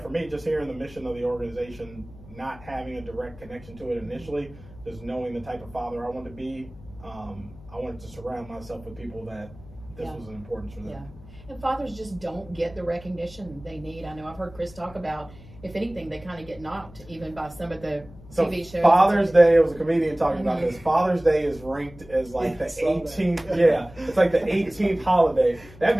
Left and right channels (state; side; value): noise; left; hum, 19 dB below the sound